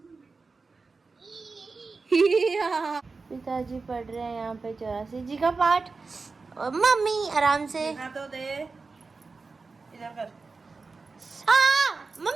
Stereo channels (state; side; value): quieter; left; 4.2 dB